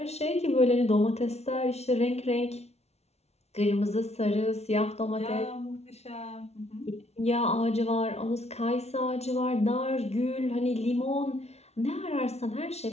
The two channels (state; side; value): late; right; 0.31 ms